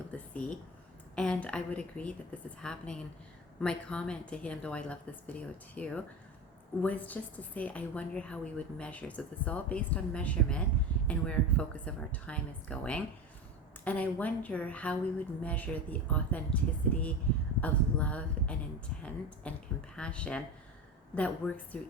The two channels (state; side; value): normal; both; correlation 0.25